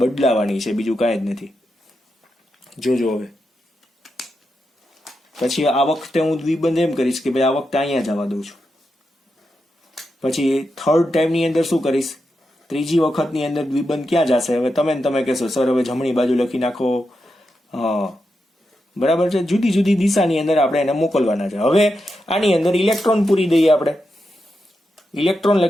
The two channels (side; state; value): both; normal; correlation 0.87